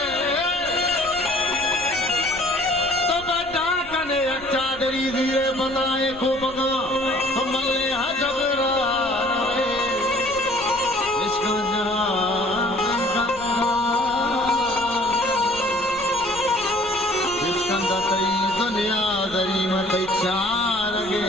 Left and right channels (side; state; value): left; noise; rumble, 20 dB below the sound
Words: तो बच्चा कने अच्छा दरी धीरे बताए को बगा तो मल्ले हजबरा दुनिया दरी मत चार गे